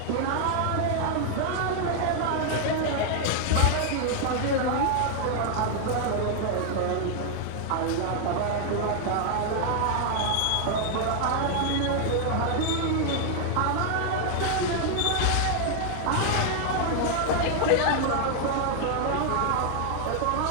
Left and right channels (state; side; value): different; both; correlation 0.00